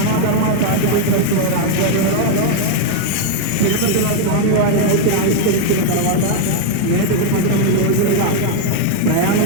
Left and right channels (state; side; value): different; both; correlation 0.01